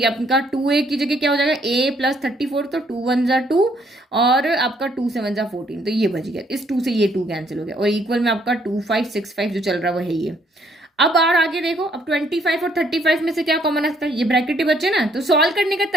आपका 2a की जगह क्या हो जाएगा a प्लस 34, तो 2 1 जा 2 और आपका 2 7 जा 14, तो ये बच गया, इस 2 से ये 2 कैंसिल हो गया, और इक्वल में आपका 2565 जो चल रहा है वो है ये। अब आगे देखो, अब 25 और 35 में से क्या कॉमन आता है, ये ब्रैकेट ही बचे ना, तो सॉल्व करने का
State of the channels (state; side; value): normal; both; correlation 0.67